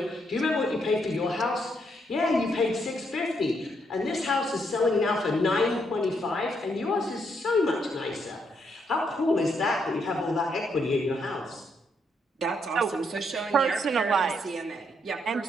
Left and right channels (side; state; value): both; normal; correlation 0.76